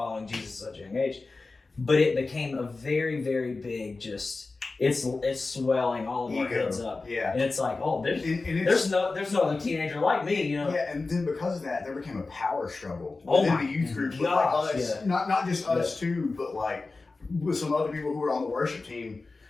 Jesus at such a young age. But it became a very, very big it's swelling all of our heads up. Yeah. And it's like, there's no other teenager like me, Yeah, and then because of that, there became a power struggle within the youth group. Gosh, us, not just us too, but with some other people who were on the worship team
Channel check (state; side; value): quieter; right; 3.7 dB